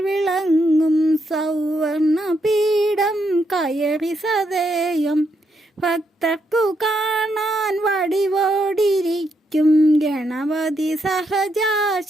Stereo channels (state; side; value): normal; both; correlation 0.79